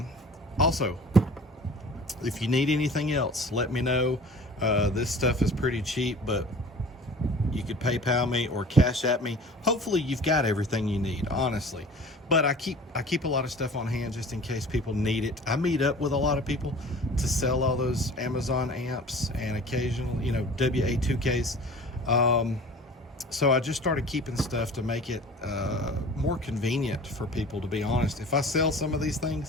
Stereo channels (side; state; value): both; normal; correlation 0.43